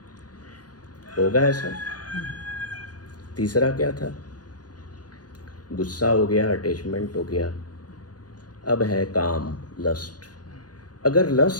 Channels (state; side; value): late; right; 0.69 ms